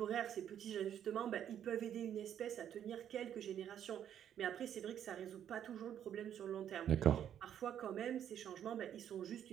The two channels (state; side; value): quieter; left; 9.8 dB